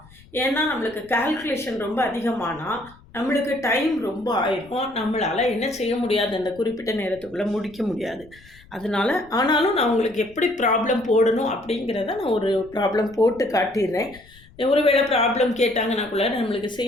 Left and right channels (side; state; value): left; noise; rumble, 25 dB below the sound